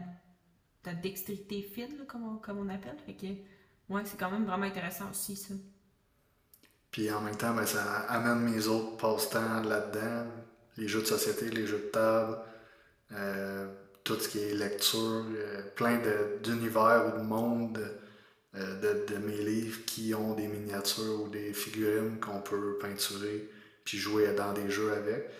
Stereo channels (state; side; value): identical; both; correlation 1.00